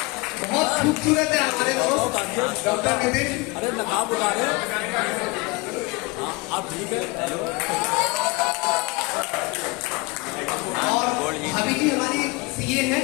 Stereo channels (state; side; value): quieter; right; 25.4 dB